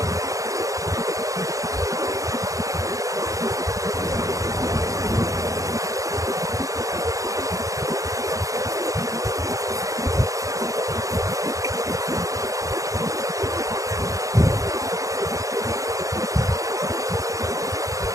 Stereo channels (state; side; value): late; left; 0.16 ms